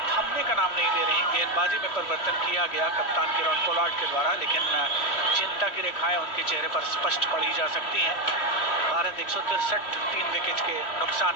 का नाम नहीं ले रही। गेंदबाजी में परिवर्तन किया गया कप्तान किरण पोलार्ड के द्वारा, लेकिन चिंता की रेखाएं उनके चेहरे पर स्पष्ट पड़ी जा सकती हैं। भारत 163 3 विकेट के नुकसान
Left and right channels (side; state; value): right; late; 3.0 ms